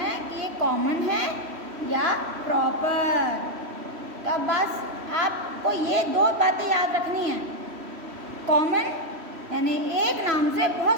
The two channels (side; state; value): left; late; 3.1 ms